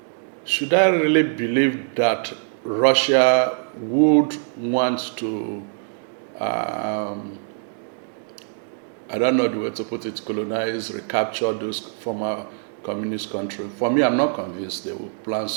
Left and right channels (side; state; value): left; silent; digital silence